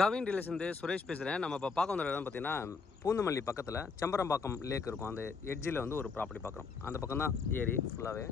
relation Suresh பேசுகிறேன். நம்ம இப்போ பார்க்க வந்த இடம் பார்த்தீங்கன்னா பூந்தமல்லி பக்கத்தில் செம்பரம்பாக்கம் லேக் இருக்கும். அந்த எட்ஜில் வந்து ஒரு ப்ராப்பர்ட்டி பார்க்குறோம். அந்த பக்கம் தான் ஏரி ஃபுல்லாகவே.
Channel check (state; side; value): quieter; right; 4.9 dB